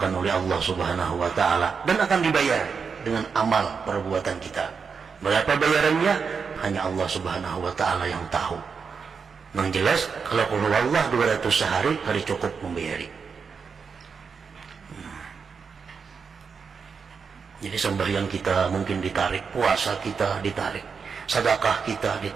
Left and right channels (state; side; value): quieter; left; 5.7 dB